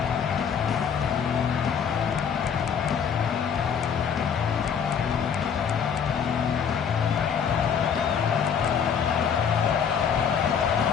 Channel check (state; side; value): quieter; right; 7.3 dB